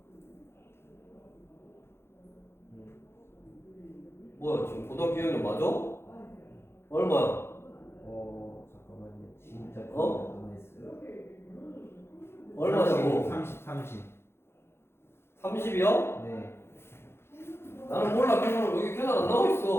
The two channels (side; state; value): right; late; 0.12 ms